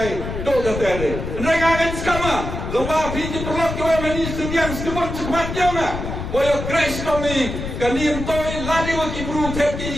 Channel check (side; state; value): left; noise; rumble, 6 dB below the sound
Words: do kata ni. Mereka akan skama, lomba pinjam perlok kau meni sediang sekemat jama. Boyo crash kami kanim toy ladi waki bru